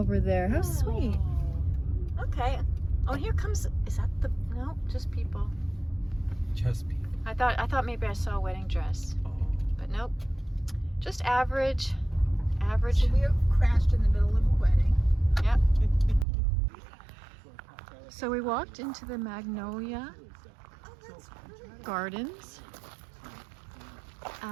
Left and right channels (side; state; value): left; drops out; at 16.2 s